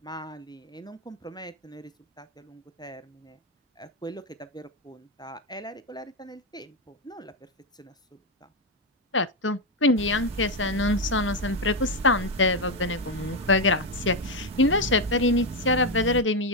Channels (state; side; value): normal; both; correlation 0.07